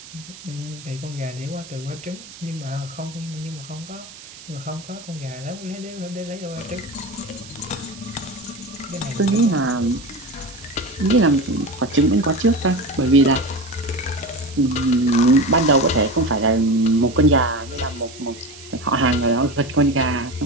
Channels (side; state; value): right; noise; hiss, 18 dB below the sound